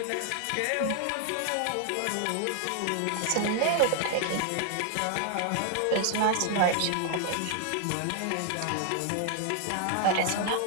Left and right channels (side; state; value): both; different; correlation 0.00